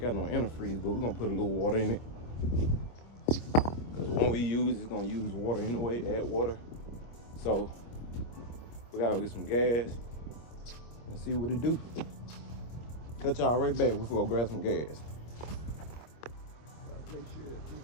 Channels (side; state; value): right; late; 25 ms